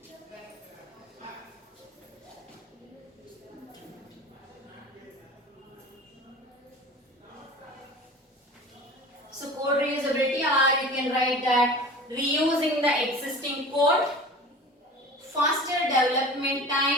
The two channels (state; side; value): normal; both; correlation 0.38